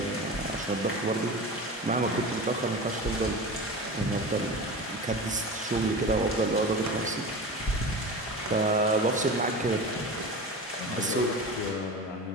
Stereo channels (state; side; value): normal; both; correlation 0.30